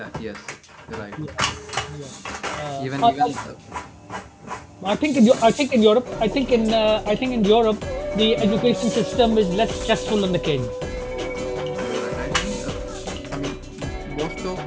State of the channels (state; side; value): identical; both; correlation 1.00